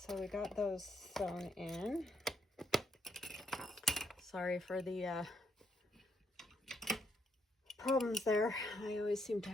we got those sewn in. Sorry for the problems there. I always seem to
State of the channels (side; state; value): both; normal; correlation 0.75